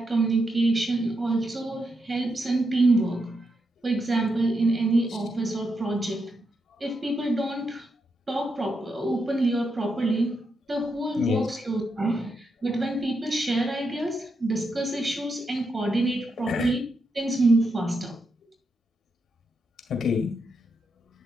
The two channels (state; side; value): normal; both; correlation 0.83